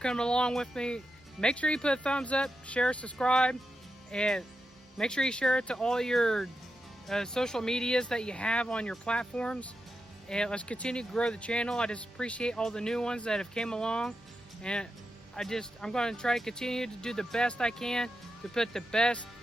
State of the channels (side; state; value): both; normal; correlation 0.88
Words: along with me. Make sure you put a thumbs up, share, subscribe, and make sure you share it to all your social medias that you have on your platforms. And let's continue to grow the channel. I just appreciate all the new ones that have came along. And I'm going to try to continue to do the best I can to put the best